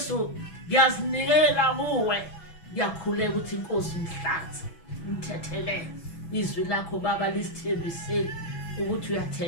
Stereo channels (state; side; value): late; right; 6.1 ms